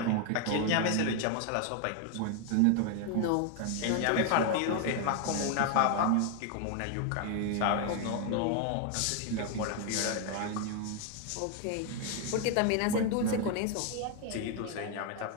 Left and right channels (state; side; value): different; both; correlation 0.00